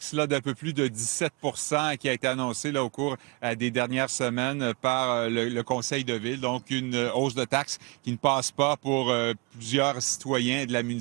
d'un peu plus de 17 qui a été annoncée au cours des dernières semaines par le Conseil de ville. Donc, une hausse de taxes qui ne passe pas pour plusieurs citoyens de la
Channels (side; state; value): left; quieter; 27.6 dB